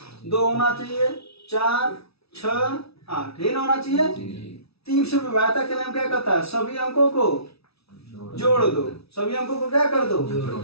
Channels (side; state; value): right; late; 0.77 ms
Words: 2 होना चाहिए, 4 6 8 ये होना चाहिए। 3 से विभाज्यता के नियम क्या कहता है? सभी अंकों को जोड़ दो। सभी अंकों को क्या कर दो?